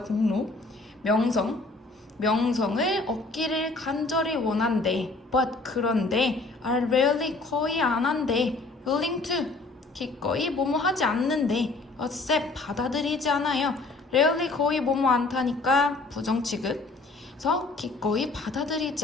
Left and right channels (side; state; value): right; quieter; 3.4 dB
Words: 공로 명성을 얻기를 간절히 원한대 but 그런데 are rarely 거의 안 한대 willing to 기꺼이 뭐뭐 하지 않는데 accept 받아들이지 않아요. rarely 거의 뭐뭐 않다니까 부정 취급 그래서 기꺼이 받아들이지